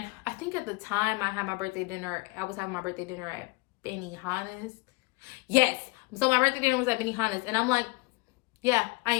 I think at the time I was having my birthday dinner at Benihana's. Yes. So my birthday dinner was at Benihana's. And I'm like, yeah, I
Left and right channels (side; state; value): right; quieter; 26.5 dB